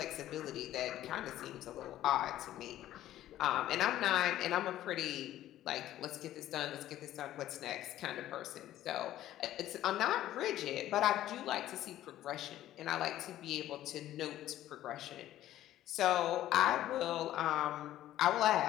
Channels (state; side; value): quieter; right; 13.4 dB